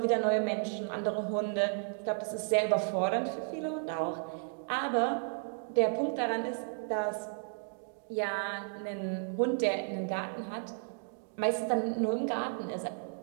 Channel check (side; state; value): left; silent; digital silence